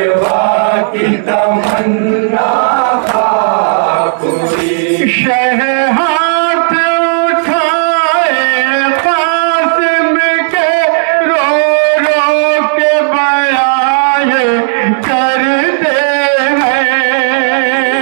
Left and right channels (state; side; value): silent; left; digital silence